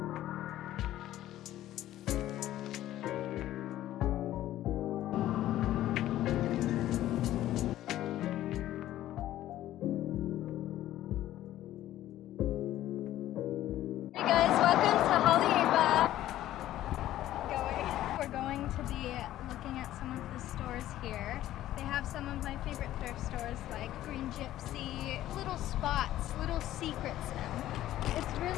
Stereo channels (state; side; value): quieter; right; 13.7 dB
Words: Looking at some of the stores here. They have some of my favorite thrift stores like Green Gypsy, little spots, little secrets. It's